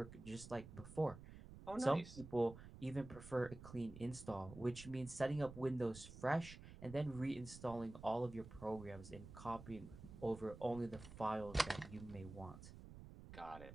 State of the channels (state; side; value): noise; right; rumble, 14 dB below the sound